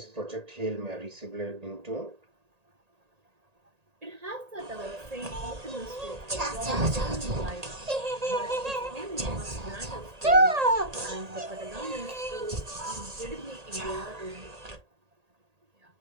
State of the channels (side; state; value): left; late; 1.8 ms